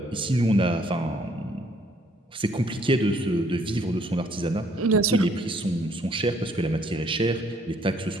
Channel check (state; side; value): normal; both; correlation 0.64